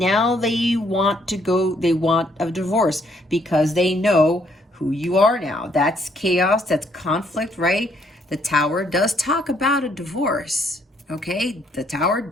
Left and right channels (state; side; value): normal; both; correlation 0.69